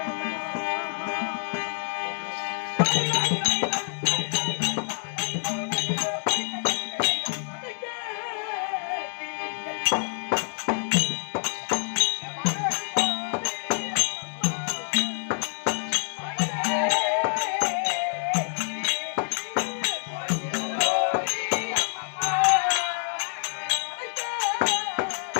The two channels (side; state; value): right; silent; 60 dB below the other